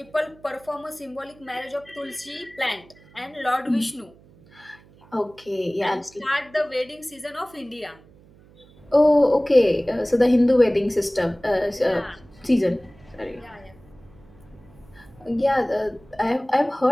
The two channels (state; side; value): noise; right; hum, 26 dB below the sound